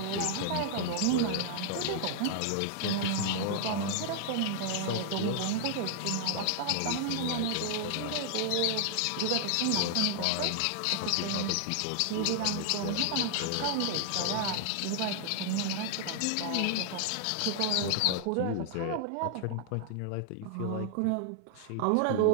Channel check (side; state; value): both; different; correlation 0.00